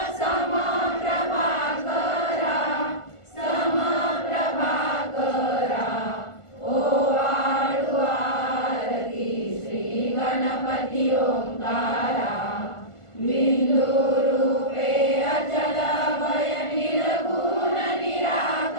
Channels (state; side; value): late; right; 1.5 ms